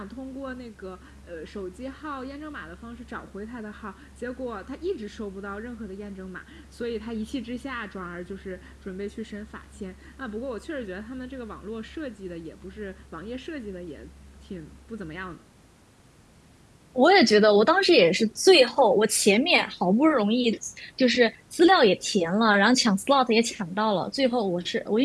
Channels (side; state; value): both; identical; correlation 1.00